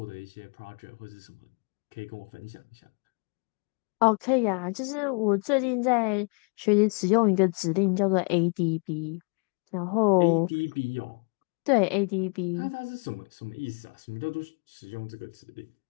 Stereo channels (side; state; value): right; quieter; 36.3 dB